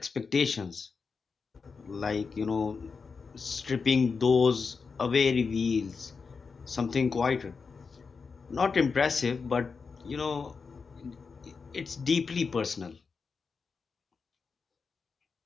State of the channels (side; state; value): right; quieter; 5.1 dB